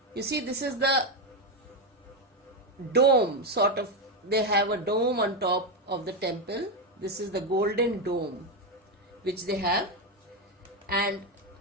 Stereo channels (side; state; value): both; normal; correlation 0.08